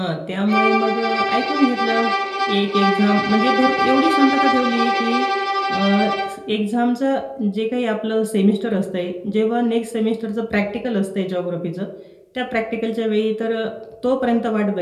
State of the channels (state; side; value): identical; both; correlation 1.00